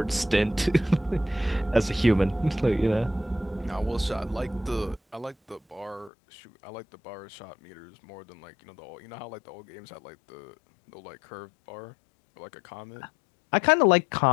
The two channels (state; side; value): drops out; right; at 6.1 s